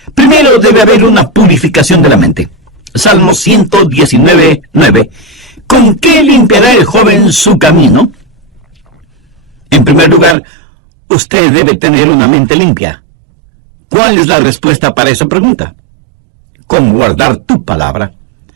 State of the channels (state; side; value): drops out; left; at 10.4 s